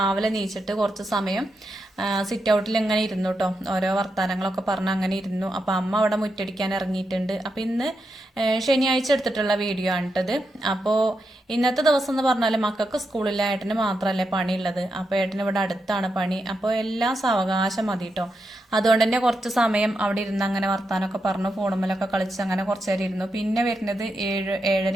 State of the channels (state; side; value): normal; both; correlation 0.85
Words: നീച്ചിട്ട് കുറച്ച് സമയം സിറ്റ് ഔട്ടിൽ ഇങ്ങനെ ഇരുന്നു കേട്ടോ. ഓരോ വർത്തമാനങ്ങളൊക്കെ പറഞ്ഞ് അങ്ങനെ ഇരുന്നു. അപ്പോൾ അമ്മ അവിടെ മുറ്റടിക്കാൻ ഇറങ്ങിയിട്ടുണ്ട്. അപ്പോൾ ഇന്ന് ശനിയാഴ്ച എടുത്തിട്ടുള്ള വീഡിയോ ആണ് കേട്ടത്. അപ്പോൾ ഇന്നത്തെ ദിവസം എന്ന് പറഞ്ഞാൽ മക്കൾക്ക് സ്കൂളിൽ ഏട്ടന് മാത്രമല്ലേ പണിയുള്ളത്. അപ്പോൾ ഏട്ടന് ഇവിടെ അടുത്താണ് പണി. അപ്പോൾ എല്ലാം സാവകാശം മതി കേട്ടോ. അതുകൊണ്ട് തന്നെ കുറച്ച് സമയം അവിടെ ഇരുന്ന് അങ്ങനെ വർത്താനമൊക്കെ പറഞ്ഞു ഫോണുമ്മലൊക്കെ കളിച്ച് അങ്ങനെ കുറച്ച് നേരം ഇരുന്നു. പിന്നെ വരുന്നത്